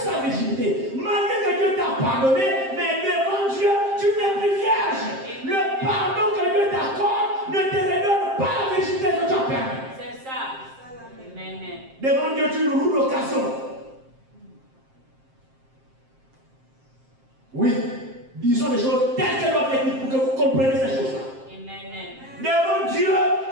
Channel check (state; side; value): late; left; 7.6 ms